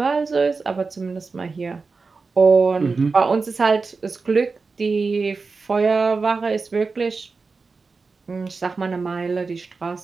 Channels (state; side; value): quieter; left; 4.3 dB